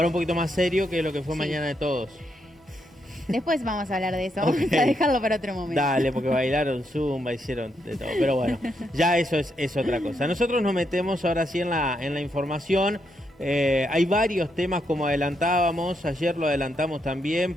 un poquito más serio que lo que fue Sí. Mañana de Todos. Después vamos a hablar de eso, Okay. vamos a dejarlo para otro momento. Dale, porque bailaron zumba, hicieron de todo. Pero bueno, ya eso es otra cosa. Nosotros nos metemos ahora sí en la información. Hay varios temas, como adelantábamos, ayer lo adelantamos también,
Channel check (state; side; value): normal; both; correlation 0.80